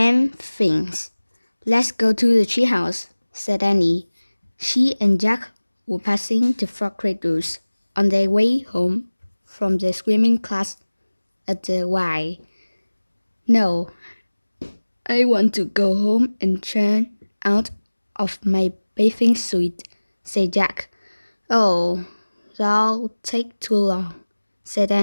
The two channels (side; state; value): both; inverted; correlation -1.00